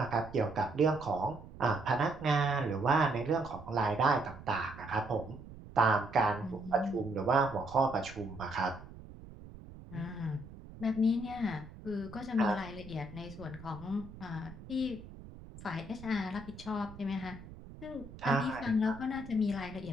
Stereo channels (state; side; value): noise; right; rumble, 16 dB below the sound